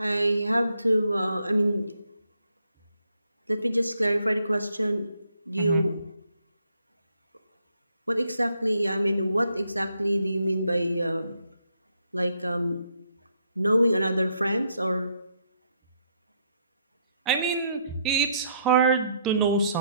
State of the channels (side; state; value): both; inverted; correlation -0.74